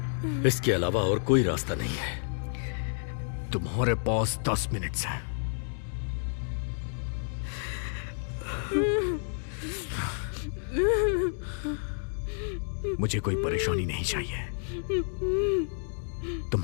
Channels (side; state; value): right; silent; digital silence